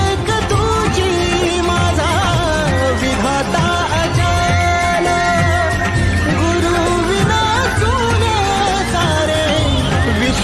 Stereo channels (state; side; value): identical; both; correlation 1.00